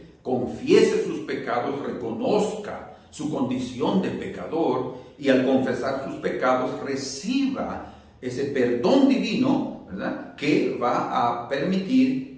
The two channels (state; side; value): identical; both; correlation 1.00